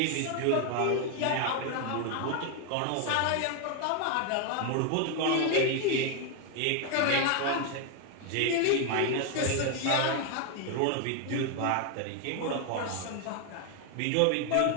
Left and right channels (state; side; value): different; both; correlation 0.01